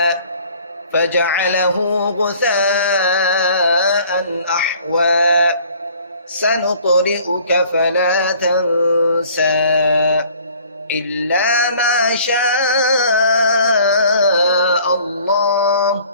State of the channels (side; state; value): both; inverted; correlation -0.53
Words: فجعله غثاء أحوى سنقرئك فلا تنسى إلا ما شاء الله